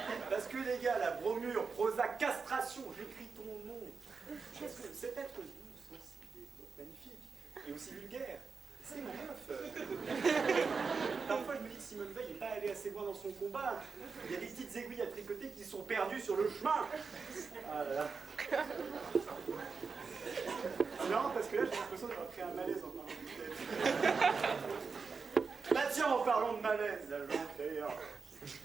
Parce que les gars, la bromure, Prozac, castration, j'écris ton nom. Parce que cet être doux, sensible et magnifique, et aussi vulgaire, c'est mon meuf. Parfois je me dis que Simone Veil n'est pas allée assez loin dans son combat. Il y a des petites aiguilles à tricoter qui sont perdues sur le chemin. Ah là là. C'est marrant parce que là j'ai l'impression d'avoir créé un malaise en parlant de tête. Bah tiens, en parlant de malaise, là j'en crée un.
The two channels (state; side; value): quieter; left; 4.9 dB